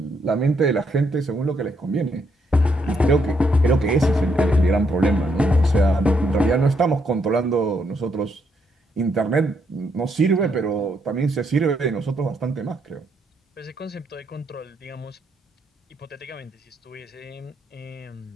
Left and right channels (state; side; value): normal; both; correlation 0.75